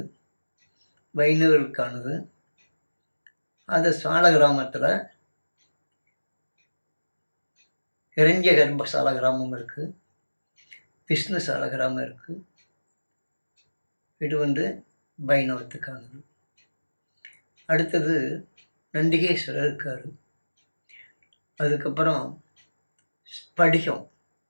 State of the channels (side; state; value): both; inverted; correlation -1.00